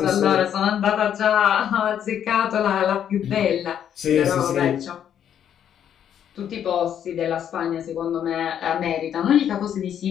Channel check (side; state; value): right; quieter; 9.4 dB